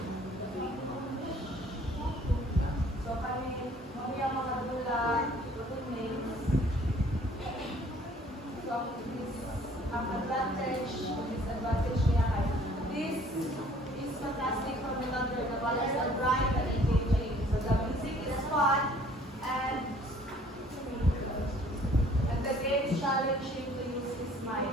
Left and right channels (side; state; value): both; normal; correlation 0.56